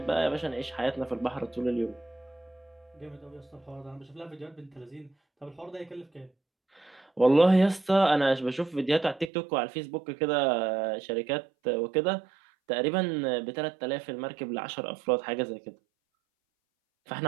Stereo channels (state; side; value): drops out; left; at 9.3 s